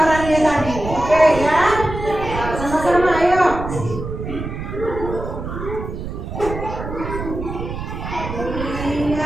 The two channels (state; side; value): noise; right; rumble, 7 dB below the sound